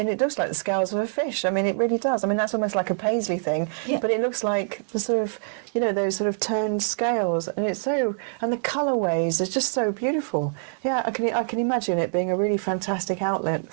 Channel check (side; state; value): left; silent; digital silence